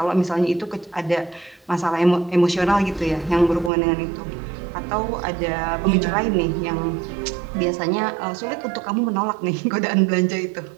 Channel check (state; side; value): drops out; left; at 3.7 s